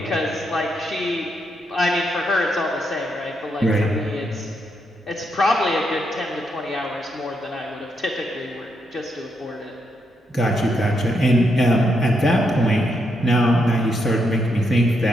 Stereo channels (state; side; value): normal; both; correlation 0.79